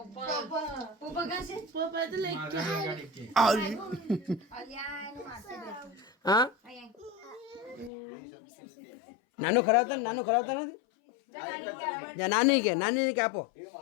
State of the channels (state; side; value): drops out; right; at 7.9 s